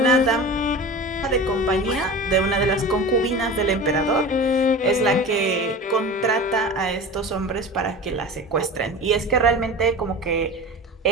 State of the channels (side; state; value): both; normal; correlation 0.33